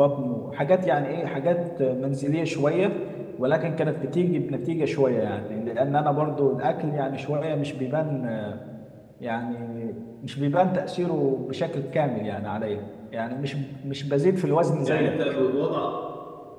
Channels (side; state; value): both; identical; correlation 1.00